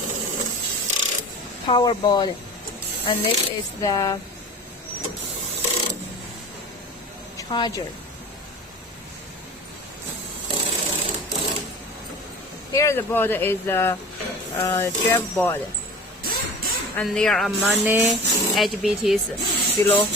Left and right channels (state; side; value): normal; both; correlation 0.38